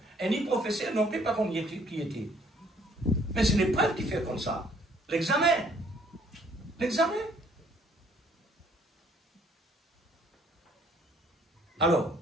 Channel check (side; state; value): both; normal; correlation 0.62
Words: et ni professeur non plus, par contre, qui était. Mais c'est l'épreuve qui fait comme ça. L'examen. L'examen. Alors,